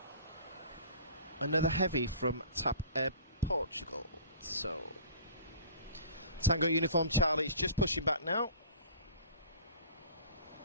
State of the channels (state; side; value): inverted; both; correlation -0.46